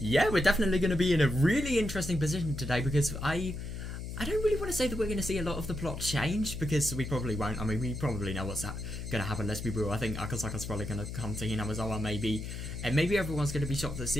yeah, we're definitely going to be in a really interesting position today because I don't really want to say that we're going to see a lot of the plot change, because we probably won't. I mean, we probably know what's going to happen, let's be real. I think Akasaka's probably going to come to Hinamizawa maybe everyone's going to be shocked at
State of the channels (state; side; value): noise; left; hum, 7 dB below the sound